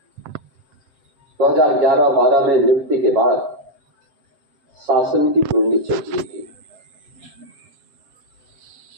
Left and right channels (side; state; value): left; late; 7.7 ms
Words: 2011-12 में नियुक्ति के बाद शासन की जुड़नी चाहिए थी।